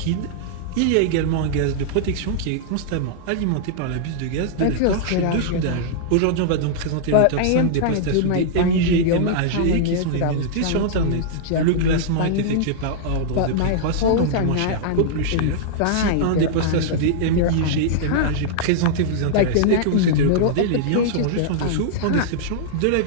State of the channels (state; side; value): different; both; correlation -0.01